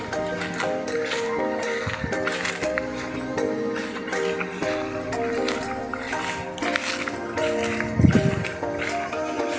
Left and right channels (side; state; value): both; identical; correlation 1.00